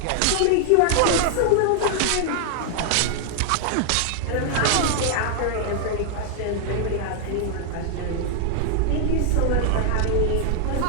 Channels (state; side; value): different; both; correlation 0.00